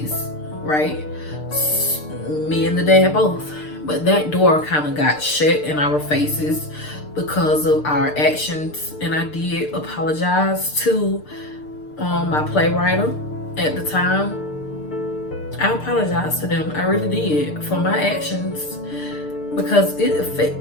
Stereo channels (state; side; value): late; right; 6.7 ms